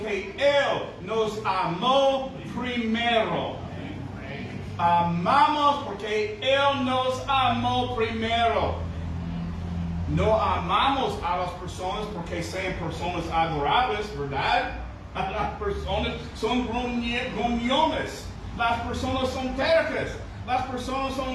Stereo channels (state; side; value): identical; both; correlation 1.00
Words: Él nos amó primero. Amamos porque Él nos amó primero. No amamos a las personas porque sean personas adorables, ¿verdad? Las personas son gruñones. Las personas son tercas. las personas